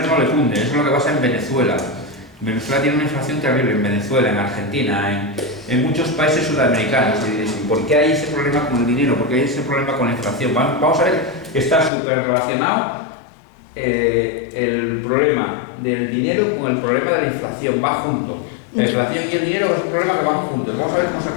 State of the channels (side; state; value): right; drops out; at 11.9 s